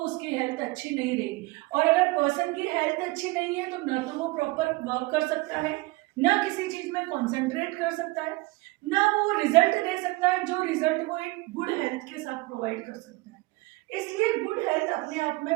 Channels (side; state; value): left; quieter; 22.7 dB